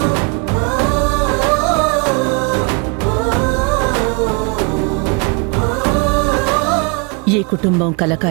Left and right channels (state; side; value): quieter; left; 31.1 dB